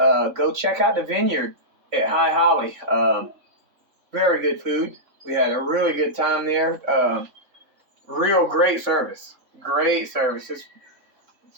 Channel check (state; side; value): late; left; 3.6 ms